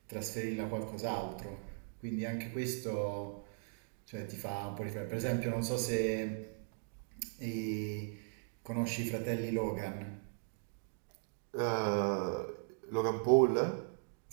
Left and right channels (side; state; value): left; silent; digital silence